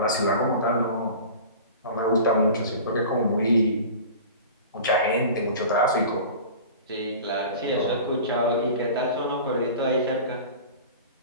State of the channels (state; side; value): inverted; both; correlation -0.37